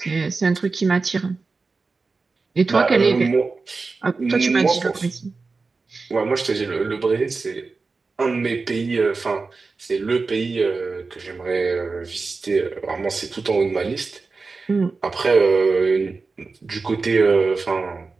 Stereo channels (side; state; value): left; quieter; 4.1 dB